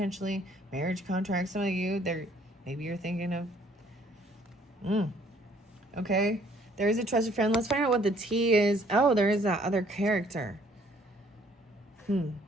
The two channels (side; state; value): both; normal; correlation 0.61